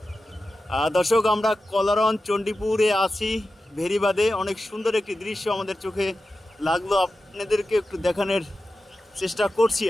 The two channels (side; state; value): both; normal; correlation 0.93